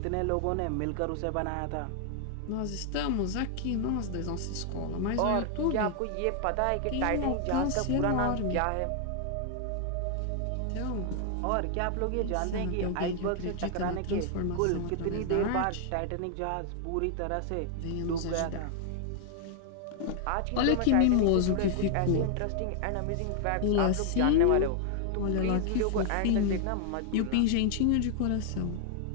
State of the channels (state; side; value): different; both; correlation 0.00